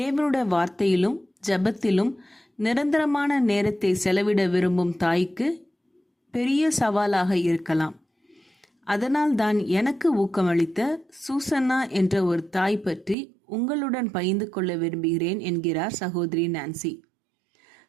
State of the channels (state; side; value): drops out; left; at 13.2 s